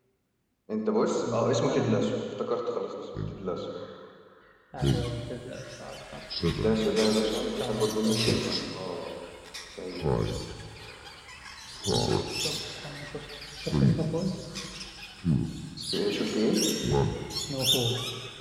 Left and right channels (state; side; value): identical; both; correlation 1.00